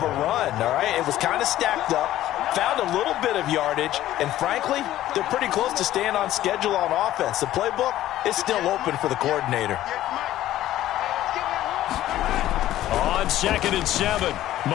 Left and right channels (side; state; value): right; quieter; 13.8 dB